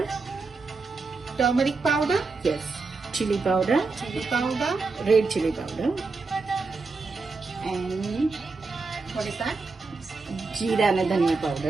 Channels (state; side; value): quieter; left; 4.0 dB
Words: Turmeric powder? yes chili powder Chili powder? red chili powder and What is that? જીરા અને ધનિયા